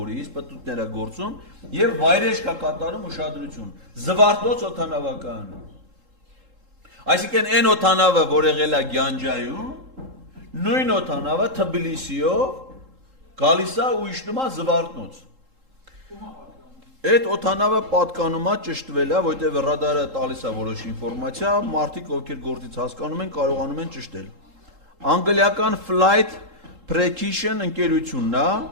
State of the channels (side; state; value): left; late; 3.7 ms